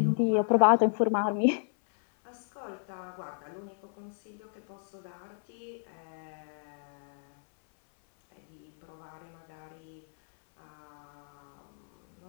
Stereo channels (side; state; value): right; silent; 56 dB below the other